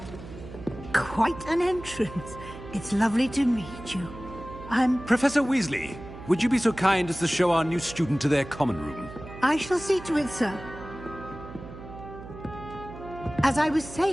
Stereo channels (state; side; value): noise; right; hum, 14 dB below the sound